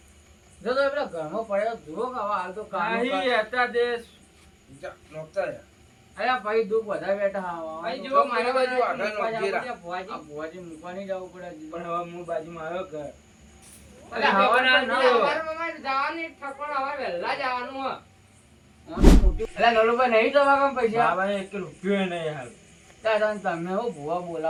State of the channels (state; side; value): identical; both; correlation 1.00